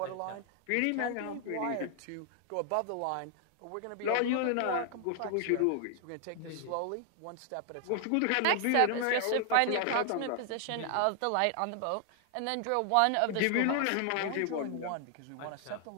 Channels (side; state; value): both; different; correlation 0.00